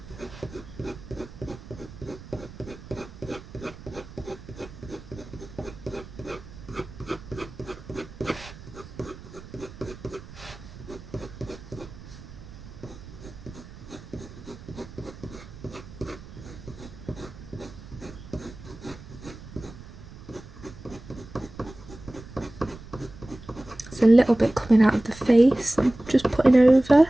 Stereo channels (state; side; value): noise; right; rumble, 16 dB below the sound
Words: A little bit coming out of the face, I'm just putting over.